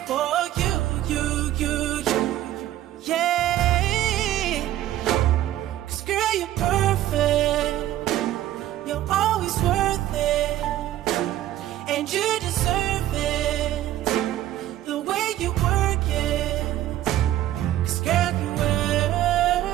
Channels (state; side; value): quieter; left; 13.4 dB